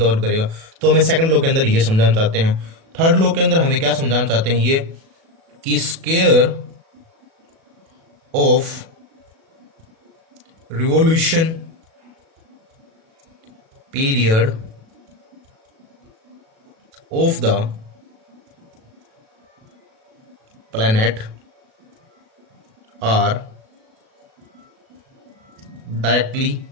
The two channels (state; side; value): late; left; 37 ms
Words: करेगा। तो हमें सेकंड लॉ के अंदर ये समझाना चाहते हैं। थर्ड लॉ के अंदर हमें क्या समझाना चाहते हैं, ये कि square of revolution period of the planet are directly